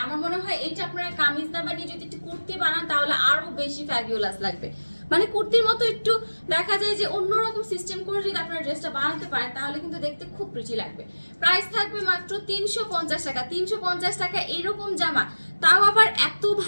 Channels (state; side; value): inverted; both; correlation -1.00